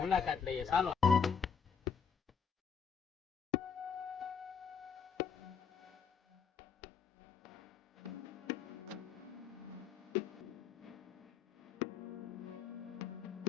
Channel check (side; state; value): right; quieter; 6.5 dB